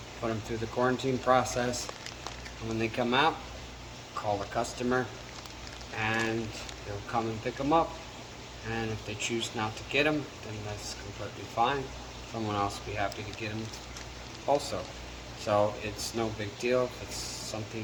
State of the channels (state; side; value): identical; both; correlation 1.00